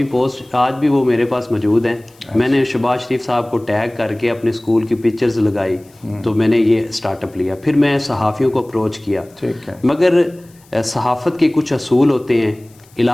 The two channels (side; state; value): left; noise; hiss, 29 dB below the sound